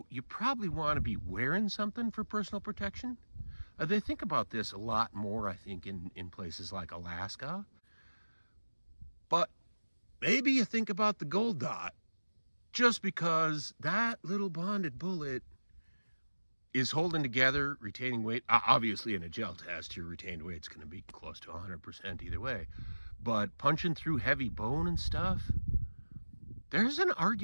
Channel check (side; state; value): both; inverted; correlation -1.00